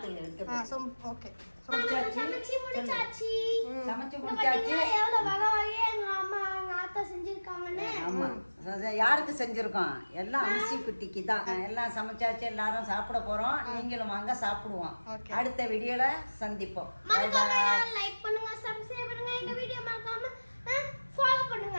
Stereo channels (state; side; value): inverted; both; correlation -1.00